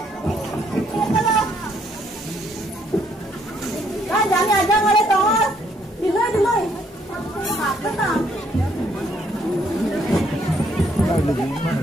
kalau kan Jani aja ngale tongol, dulu, apa tak?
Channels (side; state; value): both; normal; correlation 0.68